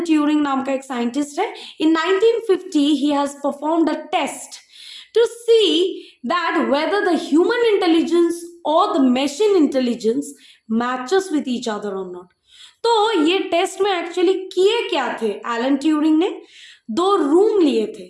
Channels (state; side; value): identical; both; correlation 1.00